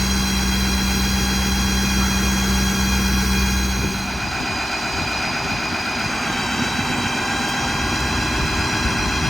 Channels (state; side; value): normal; both; correlation 0.96